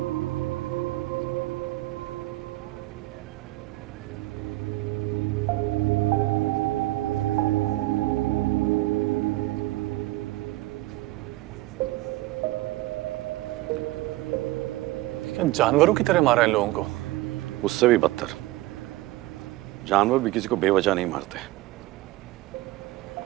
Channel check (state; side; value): quieter; left; 18.3 dB